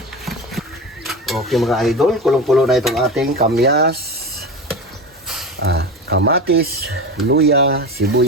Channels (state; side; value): normal; both; correlation 0.26